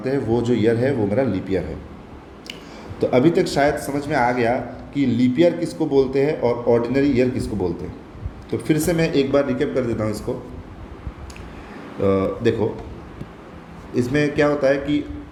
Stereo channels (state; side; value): identical; both; correlation 1.00